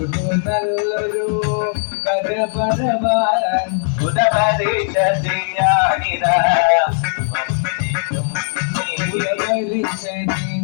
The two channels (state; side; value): silent; right; digital silence